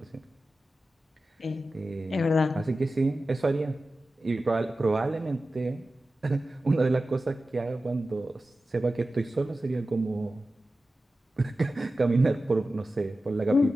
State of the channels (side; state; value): both; normal; correlation 0.94